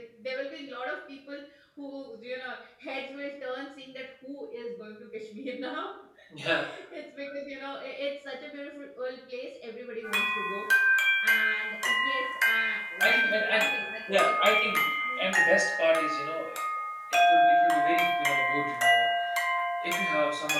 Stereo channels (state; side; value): identical; both; correlation 1.00